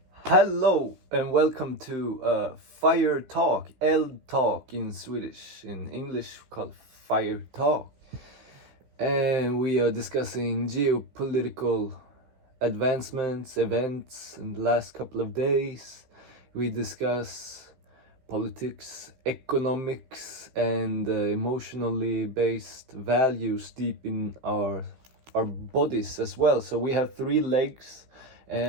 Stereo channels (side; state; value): left; late; 15 ms